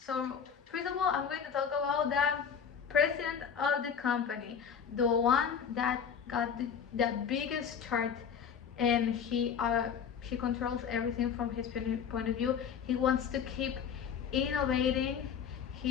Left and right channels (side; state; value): right; quieter; 7.3 dB